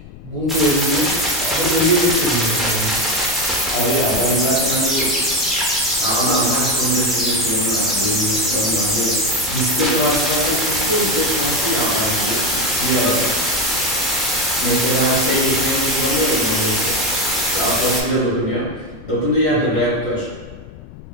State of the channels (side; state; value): left; noise; rumble, 18 dB below the sound